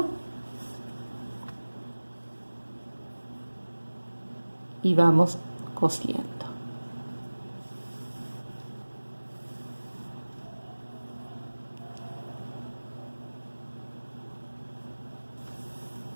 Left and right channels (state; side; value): inverted; both; correlation -1.00